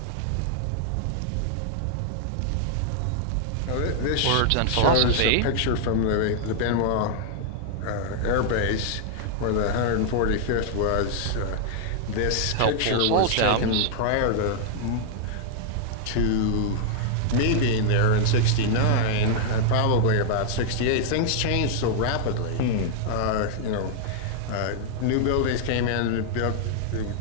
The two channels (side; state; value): both; different; correlation -0.01